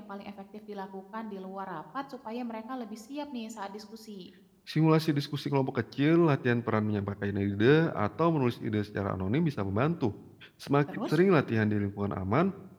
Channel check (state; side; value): identical; both; correlation 1.00